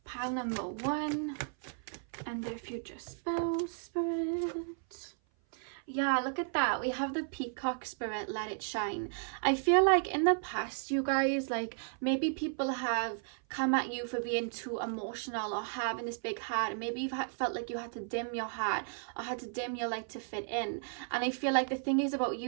and their future spouse, Spirit. Yeah, look at that. We have the peacock, Spirit, let it shine. I feel like in the past, you guys, like maybe people have come at you for being too emotional or having this big heart. Maybe you've felt like you had to dim your heart or had to dim your light to fit in. And I feel like the thing is about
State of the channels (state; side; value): silent; left; 55 dB below the other